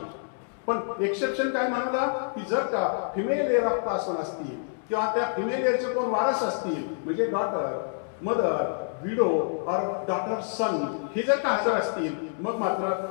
पण एक्सेप्शन काय म्हणाला की जर का फिमेल एअर ऑफ क्लास 1 असतील किंवा त्या फिमेल एअरचे कोण वारस असतील म्हणजे डॉटर, मदर, विडो और डॉटर सन हे जर का हजर असतील मग मात्र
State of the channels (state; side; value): silent; right; digital silence